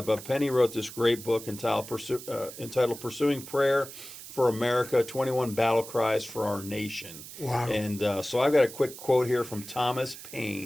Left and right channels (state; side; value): noise; right; hiss, 14 dB below the sound